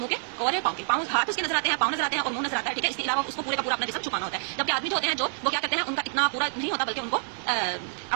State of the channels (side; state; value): left; silent; digital silence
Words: کے اور پاؤں کے. پاؤں ہاتھ اس کے نظر آتے ہیں، پاؤں نظر آتے ہیں اور منہ نظر آتا ہے، ٹھیک ہے. اس کے علاوہ اس کو پورے کا پورا اپنا جسم چھپانا ہوتا ہے. جبکہ آدمی جو ہوتے ہیں جو وہ کیا کرتے ہیں، ان کا اتنا پورا نہیں ہوتا بلکہ ان کو